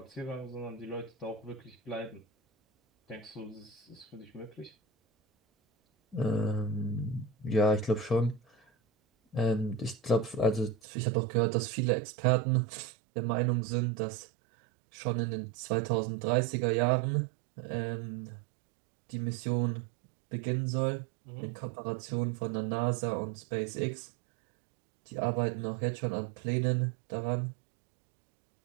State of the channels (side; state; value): left; drops out; at 10.8 s